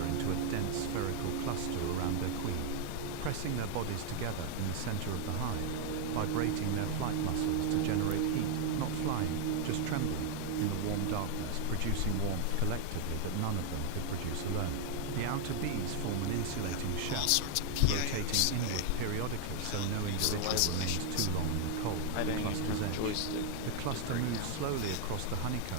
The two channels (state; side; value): different; both; correlation 0.00